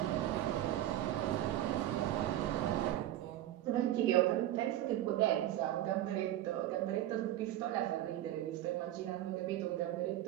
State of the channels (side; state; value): left; quieter; 13.4 dB